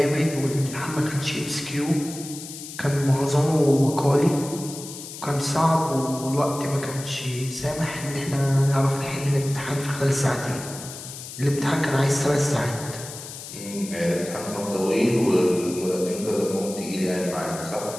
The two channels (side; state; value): left; noise; hiss, 12 dB below the sound